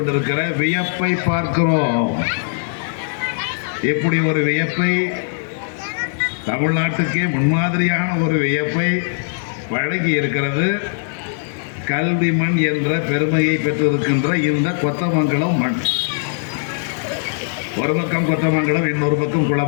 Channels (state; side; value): silent; right; digital silence